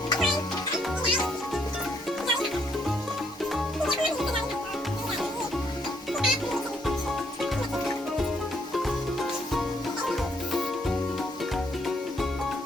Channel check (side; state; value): both; normal; correlation 0.71